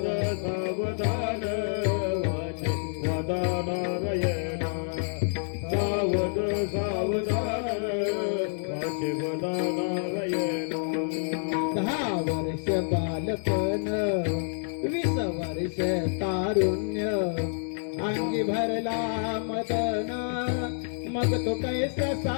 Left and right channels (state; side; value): silent; right; digital silence